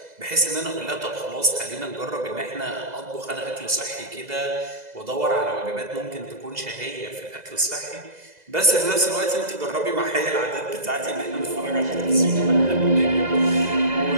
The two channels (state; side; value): late; left; 2.0 ms